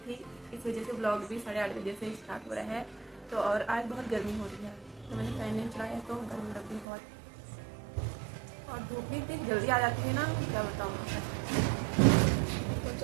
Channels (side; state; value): left; drops out; at 6.9 s